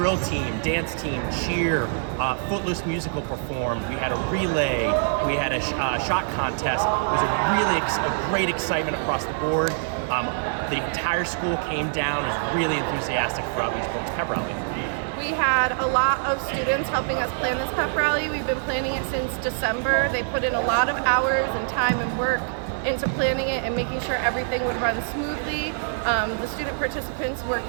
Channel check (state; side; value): silent; left; 62 dB below the other